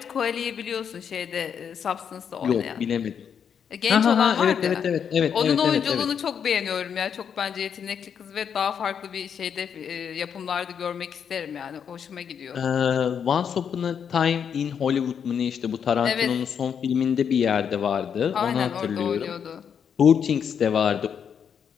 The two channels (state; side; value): quieter; right; 7.6 dB